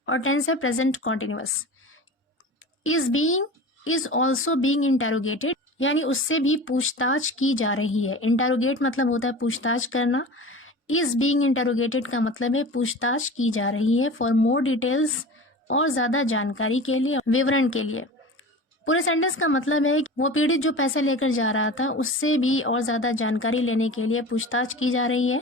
और टेंस है present continuous. Is also being interrogated यानी उससे भी पूछताछ की जा रही है। इंटरोगेट मतलब होता है पूछताछ करना, इज बीइंग इंटरोगेटेड का मतलब है पूछताछ की जा रही है। फॉर मोर डिटेल्स, और ज्यादा जानकारी के लिए, विवरण के लिए। पूरे सेंटेंस का मतलब है कि वो पीड़ित जो पैसे लेकर जा रहा था उससे भी और ज्यादा जानकारी लेने के लिए पूछताछ की जा रही है।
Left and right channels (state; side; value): normal; both; correlation 0.34